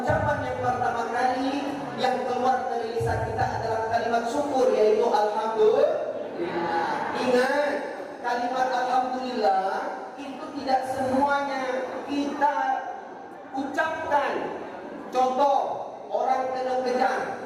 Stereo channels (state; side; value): identical; both; correlation 1.00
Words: yang pertama kali yang keluar dari lisan kita adalah kalimat syukur, yaitu alhamdulillah. Ingat, kalimat alhamdulillah itu tidak semuanya kita ucapkan. Contoh, orang kena kejar,